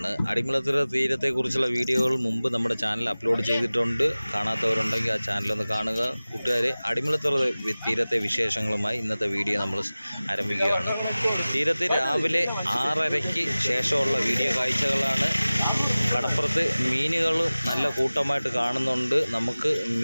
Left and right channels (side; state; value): both; inverted; correlation -0.98